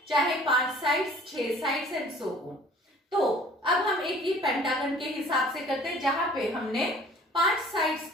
चाहे 5 sides, 6 sides and so on. तो अब हम एक ही पेंटागन के हिसाब से करते हैं, जहां पे हमने 5 साइड्स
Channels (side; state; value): both; normal; correlation 0.51